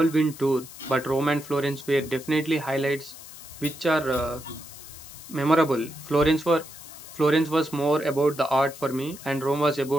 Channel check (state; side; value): noise; left; hiss, 16 dB below the sound